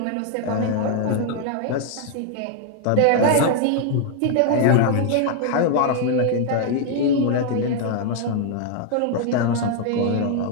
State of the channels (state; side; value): different; both; correlation 0.00